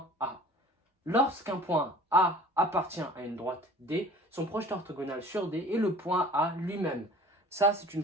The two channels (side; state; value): both; normal; correlation 0.45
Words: A. Lorsqu'un point A appartient à une droite D, son projeté orthogonal sur D est le point A lui-même. Ça, c'est une